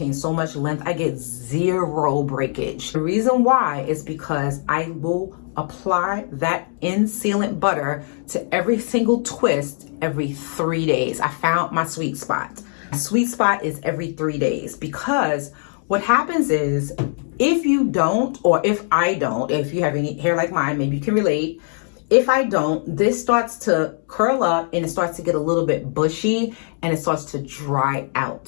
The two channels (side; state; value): right; silent; 56 dB below the other